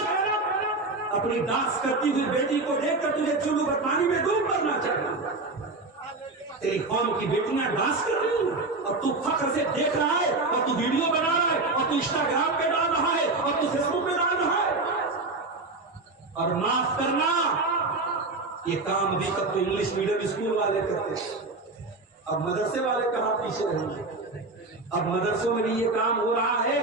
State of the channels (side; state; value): left; quieter; 3.3 dB